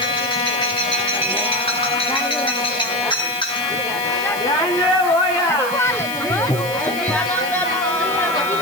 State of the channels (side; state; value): right; noise; hiss, 12 dB below the sound